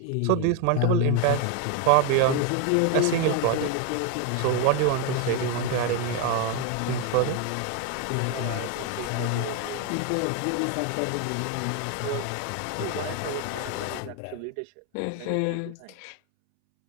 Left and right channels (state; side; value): different; both; correlation 0.01